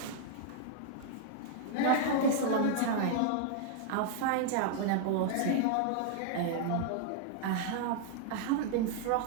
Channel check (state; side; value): different; both; correlation -0.01